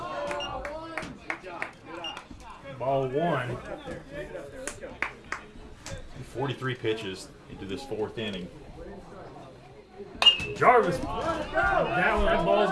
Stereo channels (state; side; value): identical; both; correlation 1.00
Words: Ball one. 43 pitches into this fourth inning. Jarvis, that ball's